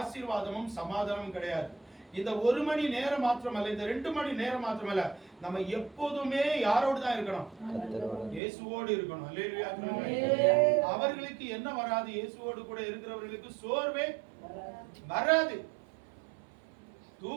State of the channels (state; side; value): drops out; left; at 8.4 s